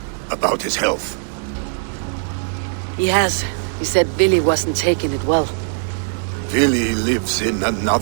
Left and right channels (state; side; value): silent; left; digital silence